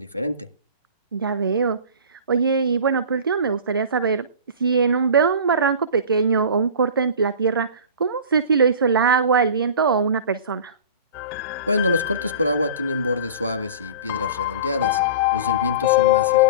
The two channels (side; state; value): both; inverted; correlation -0.36